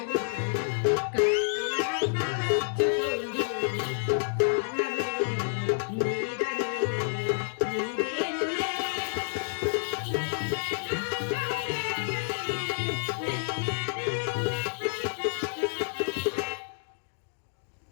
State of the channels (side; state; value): right; silent; digital silence